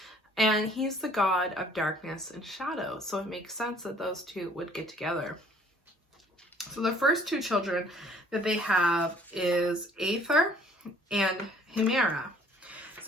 and he's the god of darkness and shadow. So it makes sense that those two would get together. So the first two children that they have is Aether and Hemera.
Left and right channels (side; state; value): both; normal; correlation 0.57